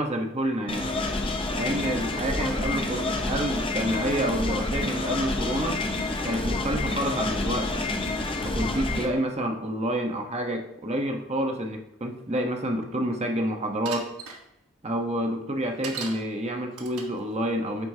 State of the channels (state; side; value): normal; both; correlation 0.55